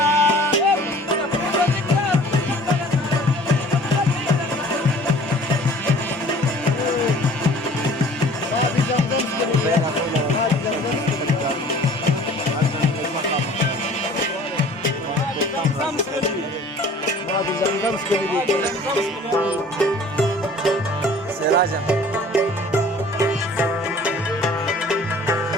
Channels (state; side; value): normal; both; correlation 0.49